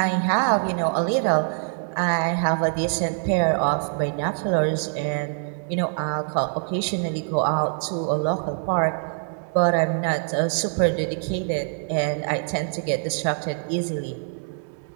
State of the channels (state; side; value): silent; left; 62 dB below the other